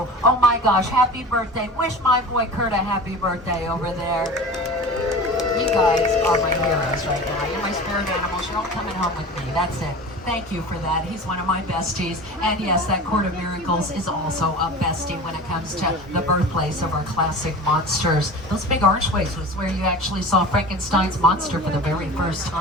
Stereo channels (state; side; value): normal; both; correlation 0.35